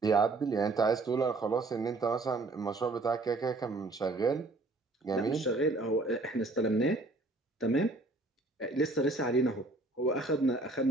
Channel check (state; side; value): quieter; left; 3.1 dB